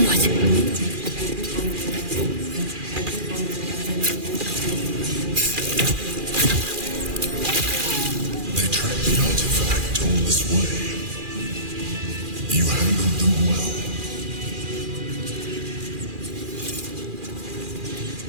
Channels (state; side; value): late; left; 2.4 ms